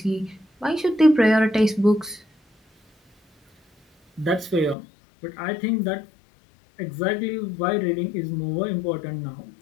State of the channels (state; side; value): drops out; right; at 4.8 s